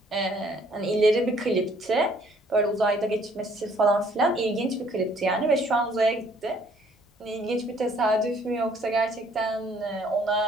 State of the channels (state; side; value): normal; both; correlation 0.61